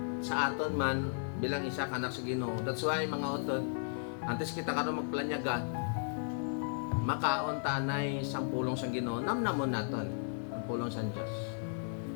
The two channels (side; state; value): right; silent; digital silence